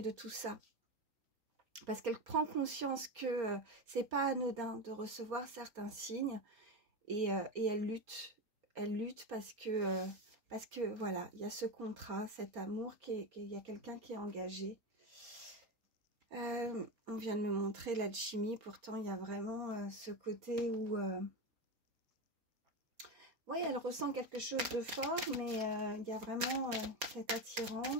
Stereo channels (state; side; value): late; left; 3.9 ms